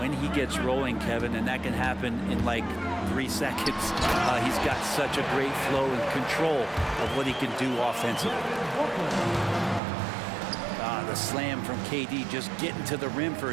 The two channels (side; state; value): left; drops out; at 9.8 s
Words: he gets rolling, Kevin, and that can happen in like 3 seconds. He's got such a great flow and control of what he can do offensively. The slam from KD, just getting to the rim for